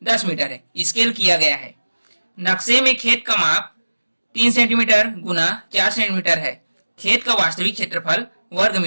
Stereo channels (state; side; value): inverted; both; correlation -1.00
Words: 10 मीटर है, स्केल किया गया है। नक्शे में खेत का माप 3 सेंटीमीटर गुना 4 सेंटीमीटर है, खेत का वास्तविक क्षेत्रफल वर्ग